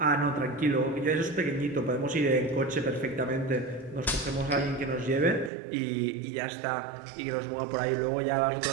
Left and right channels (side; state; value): left; drops out; at 5.5 s